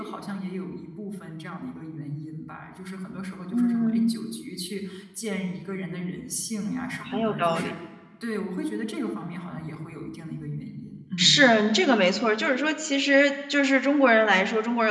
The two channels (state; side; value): identical; both; correlation 1.00